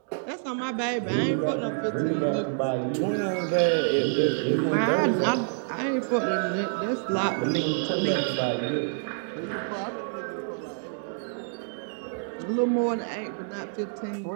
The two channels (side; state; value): left; silent; digital silence